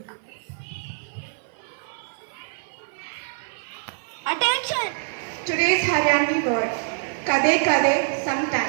Attention! Today's Haryanvi word, kade kade,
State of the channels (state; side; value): silent; left; 55 dB below the other